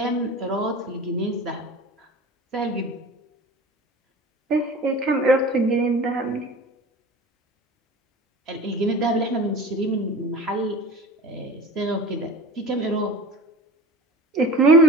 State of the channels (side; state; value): both; normal; correlation 0.38